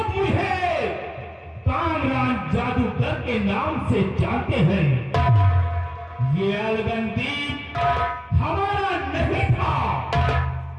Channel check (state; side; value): identical; both; correlation 1.00